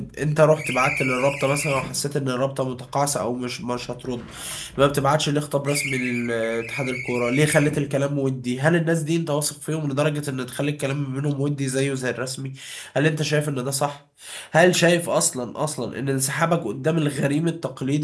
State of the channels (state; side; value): identical; both; correlation 1.00